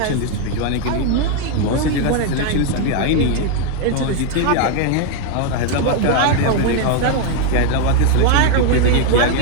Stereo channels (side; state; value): both; different; correlation 0.01